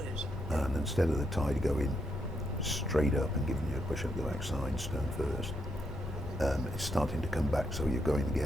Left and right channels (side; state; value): left; noise; rumble, 6 dB below the sound